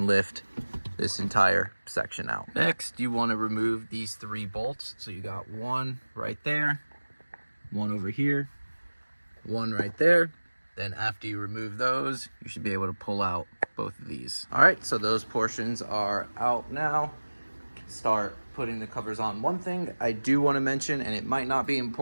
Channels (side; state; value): both; inverted; correlation -1.00